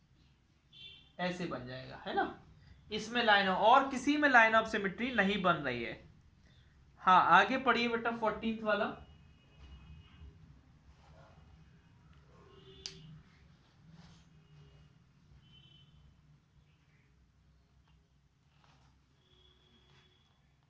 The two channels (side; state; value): both; identical; correlation 1.00